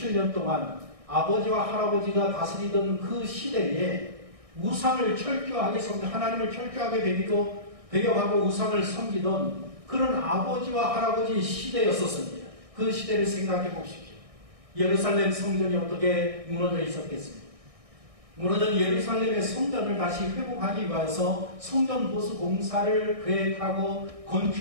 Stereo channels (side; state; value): left; late; 1.6 ms